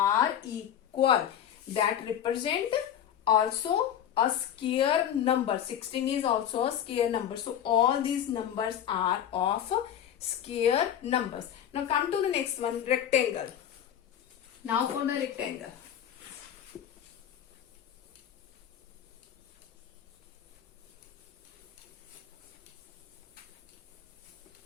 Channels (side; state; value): right; quieter; 9.9 dB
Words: equal. That represent also a square number. 16 is also a square number. So all these numbers are of square numbers. Now come to the next one, rectangle. Now for the rectangle.